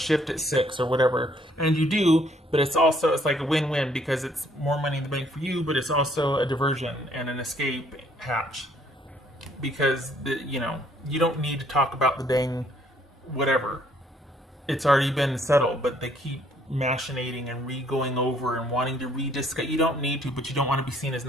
at 6 or whatever. And you do, but it's like a win-win because it's more money in the bank for you, but it's also a diversion and an escape hatch because, you don't need to talk about the dang whatever. It's already been settled, but they keep machinating and going over and wanting to rediscuss. You don't need to, but you don't want to be seen as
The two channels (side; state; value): both; normal; correlation 0.64